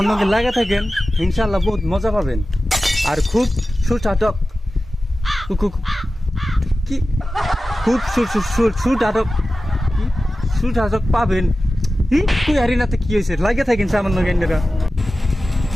লগে লাগা থাকেন, ইনশাআল্লাহ বহুত মজা পাবেন। আর খুব সুস্বাদক কি খুব সুস্বাদক পাবেন। তুই হারিনাতে কি হয়েছে লাগে থাকেন আমার লগে এন্ডেরা।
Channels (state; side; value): normal; both; correlation 0.95